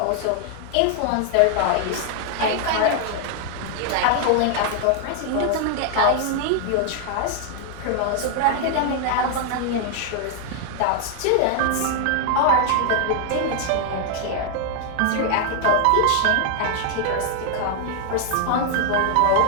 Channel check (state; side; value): different; both; correlation 0.00